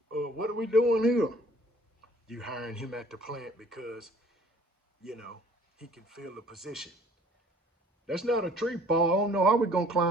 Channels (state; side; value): normal; both; correlation 0.55